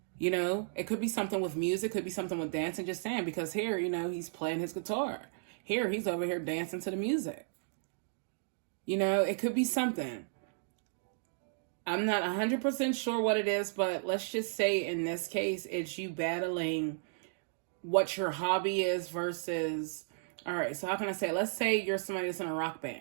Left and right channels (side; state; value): left; silent; digital silence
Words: You know, it could be something with music, could be something with dancing, just saying, because here, you know, he's playing his guitar. Here, he's over here dancing to the music. You know, it could be something. I'm not 100% sure what it is, but let's just say in this case, it's you battling what your hobby is versus, all right, so how can I say it? Let's say you're somebody that's in a rock